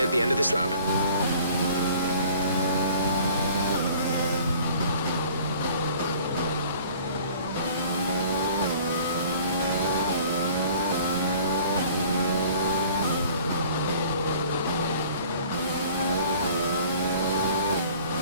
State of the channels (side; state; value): both; inverted; correlation -0.50